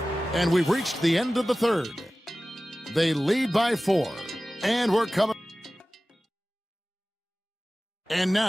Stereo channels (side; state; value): both; normal; correlation 0.97